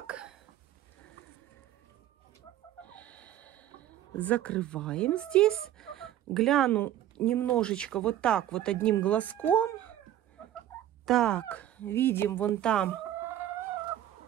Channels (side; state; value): left; quieter; 12.3 dB